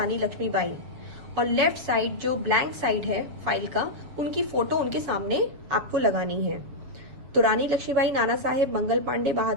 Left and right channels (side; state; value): left; late; 7.3 ms